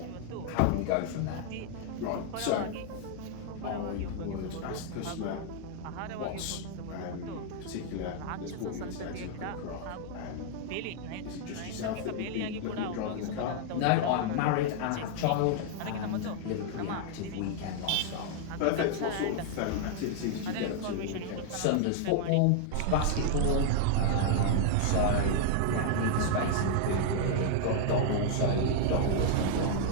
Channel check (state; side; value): different; both; correlation 0.00